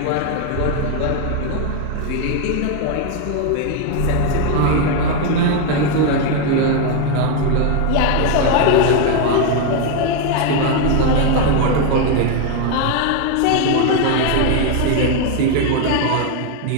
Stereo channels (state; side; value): different; both; correlation 0.01